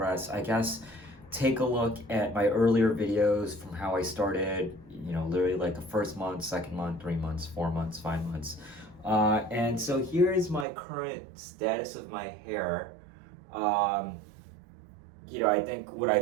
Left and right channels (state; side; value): drops out; left; at 10.7 s